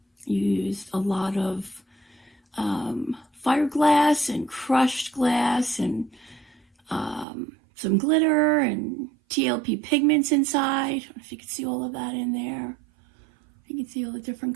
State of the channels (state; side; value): drops out; left; at 7.2 s